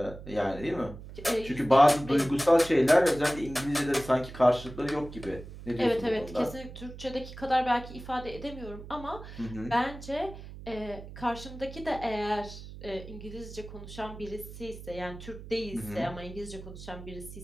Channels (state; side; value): noise; right; hum, 13 dB below the sound